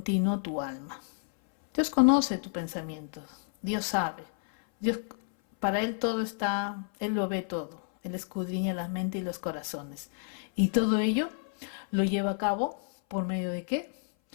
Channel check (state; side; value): silent; right; 57 dB below the other